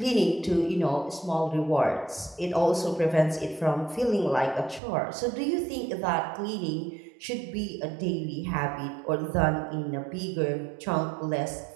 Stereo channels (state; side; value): drops out; left; at 4.8 s